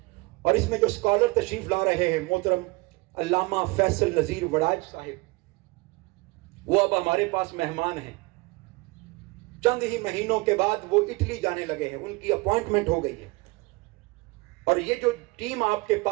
اور اس میں جو اسکالر تشریف لا رہے ہیں، محترم علامہ فیصل نذیر وڑاج صاحب، وہ اب ہمارے پاس مہمان ہیں۔ چند ہی مہینوں کے بعد وہ اٹلی جانے لگے ہیں، ان کی اپوائنٹمنٹ ہو گئی ہے۔ اور یہ جو ٹیم آپ کے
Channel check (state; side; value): quieter; left; 24.9 dB